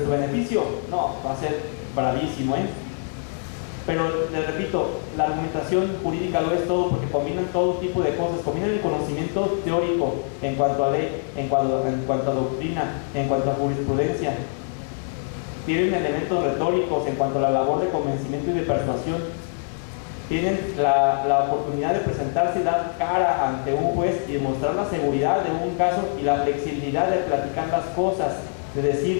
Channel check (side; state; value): right; silent; 62 dB below the other